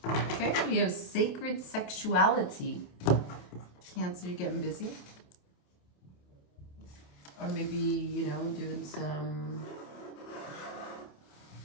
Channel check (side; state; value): right; late; 28 ms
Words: Okay, we have sacred sexuality. Cancer, you're getting busy. Or maybe, you know, doing some